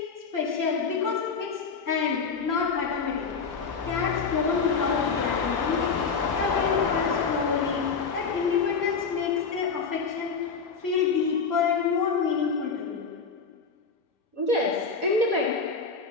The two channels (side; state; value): right; quieter; 5.3 dB